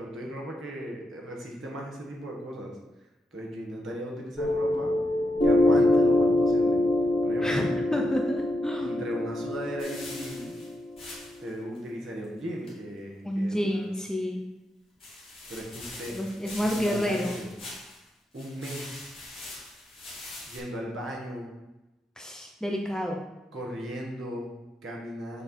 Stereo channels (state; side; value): normal; both; correlation 0.83